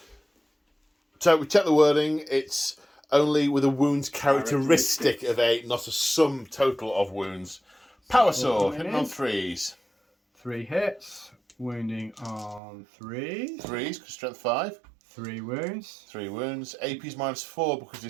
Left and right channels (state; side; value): drops out; left; at 12.6 s